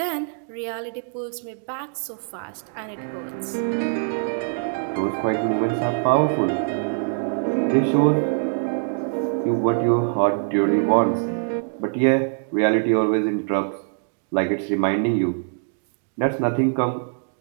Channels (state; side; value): silent; left; digital silence